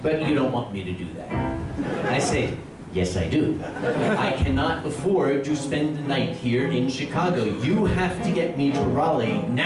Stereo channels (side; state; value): both; identical; correlation 1.00